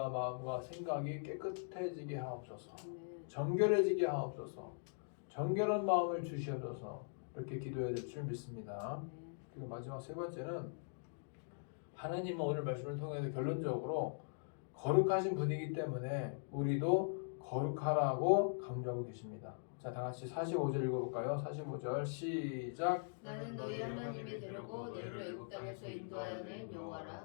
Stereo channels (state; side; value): silent; right; digital silence